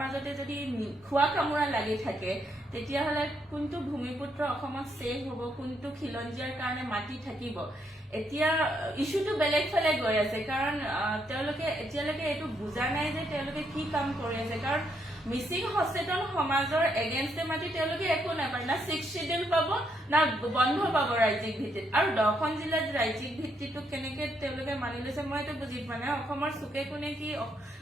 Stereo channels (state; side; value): normal; both; correlation 0.76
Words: যদি খোৱা কামোৰা লাগি থাকে তেতিয়াহ'লে কোনটো ভূমিপুত্ৰ অসমত ছেভ হ'ব, কোনটো খিলঞ্জীয়াৰ কাৰণে মাটি থাকিব? এতিয়া ইছ্যুটো বেলেগ ফালে গৈ আছে, কাৰণ তেওঁলোকে এতিয়ালৈকে এইটো বুজা নাই যে তেওঁলোকে কি কাম কৰি আছে। কাৰণ মিচিং সচেতন সমাজৰ এগেইনষ্টে মাতি তেওঁলোকে একো নাপায়, না 6th শিডিউল পাব না বন্ধ পাব ৰাজ্যিক ভিত্তিত। আৰু 10খন জিলাত ৰাজ্যিক ভিত্তিটো কেনেকে তেওঁলোকে মানি লৈছে মই এইটো বুজি পোৱা নাই। অসমৰ চুকে কোনে কি